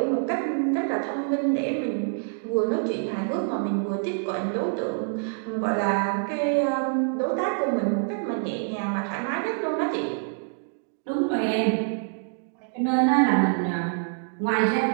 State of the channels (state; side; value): silent; left; 61 dB below the other